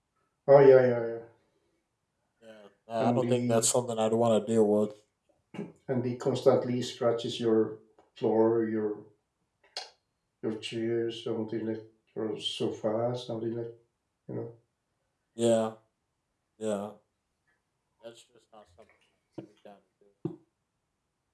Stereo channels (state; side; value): identical; both; correlation 1.00